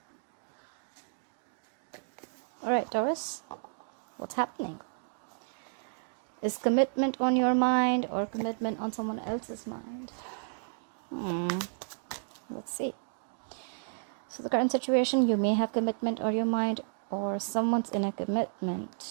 Alright, Taurus, what's happening? Is commitment on your mind or commitment on someone else's mind? Let's see. So the current situation, you may have commitment on your mind or someone's in a commitment.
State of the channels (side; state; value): left; silent; digital silence